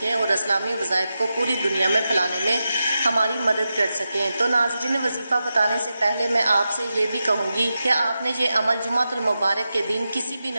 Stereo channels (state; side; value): inverted; both; correlation -0.90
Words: और इस्लामी वज़ाइफ को पूरी दुनिया में फैलाने में हमारी मदद कर सकें। तो नाज़रीन, वजीफ़ा बताने से पहले मैं आपसे ये भी कहूँगी कि आपने ये अमल जुम्मतुल मुबारक के दिन किसी भी